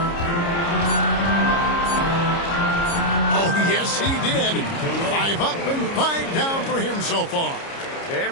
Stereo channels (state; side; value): late; right; 29 ms